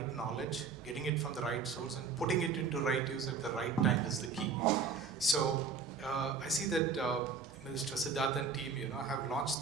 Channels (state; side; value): quieter; left; 5.2 dB